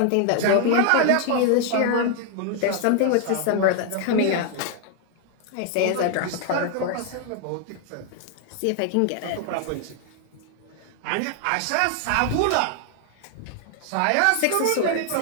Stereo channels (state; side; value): different; both; correlation 0.00